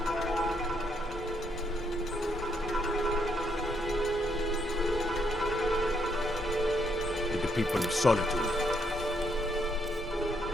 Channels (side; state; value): both; normal; correlation 0.75